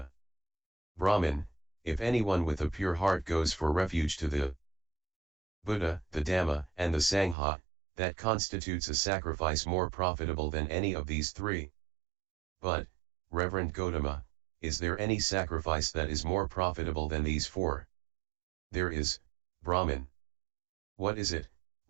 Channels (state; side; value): drops out; left; at 7.4 s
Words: Brahmin, if anyone with a pure heart goes for refuge to the Buddha, the Dhamma, and the Sangha, that constitutes a sacrifice more profitable than any of these three. But, Reverend Gautama, is there any sacrifice that is more profitable than these four? There is, Brahmin. What is it,